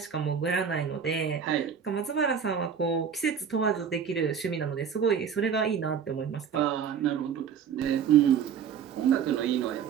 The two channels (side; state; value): left; quieter; 7.4 dB